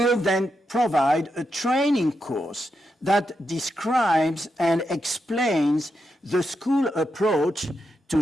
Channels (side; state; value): both; normal; correlation 0.85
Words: then provide a training course that describes and explains the school approach to